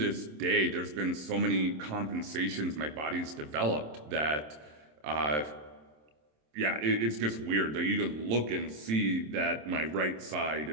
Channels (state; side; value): late; left; 26 ms